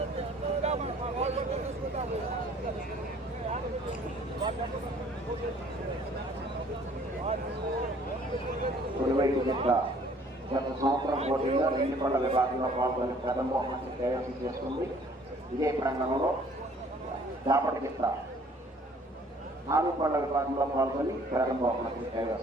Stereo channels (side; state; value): both; normal; correlation 0.56